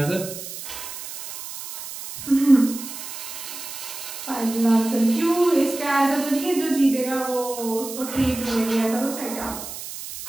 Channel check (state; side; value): noise; right; hiss, 10 dB below the sound